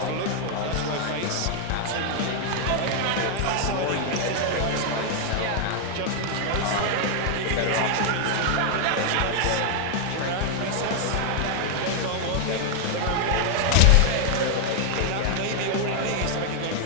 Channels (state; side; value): different; both; correlation 0.00